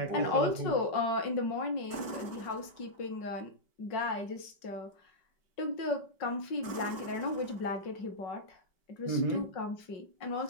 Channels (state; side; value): late; right; 5.2 ms